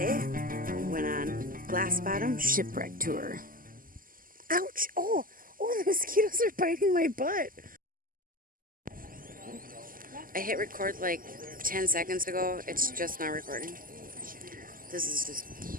we went on glass bottom shipwreck tour. Ouch! Oh, the mosquitoes are biting my butt. I hit record like 10 seconds ago. It's just not recording. This is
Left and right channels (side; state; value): left; late; 0.41 ms